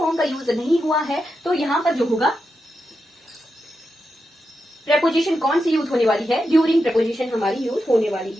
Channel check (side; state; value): both; normal; correlation 0.87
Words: का यूज नहीं हुआ है, तो यहाँ पर जो होगा प्रपोजिशन कौन सी यूज होने वाली है, ड्यूरिंग प्रपोजिशन हमारी यूज होने वाली